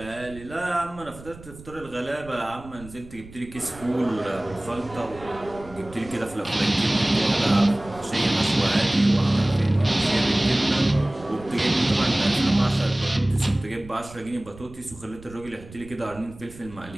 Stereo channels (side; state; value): right; noise; rumble, 18 dB below the sound